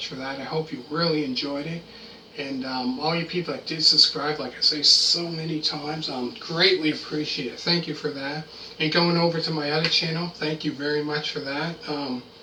for that. I hope you really enjoyed it. And all you people that did subscribe, like I say so many times, greatly appreciate it. Thank you for that. And going over to my other channel, thank you very much for that.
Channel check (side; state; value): both; identical; correlation 1.00